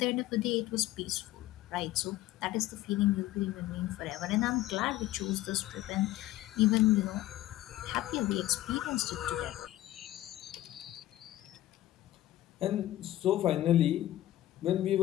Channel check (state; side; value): quieter; right; 15.0 dB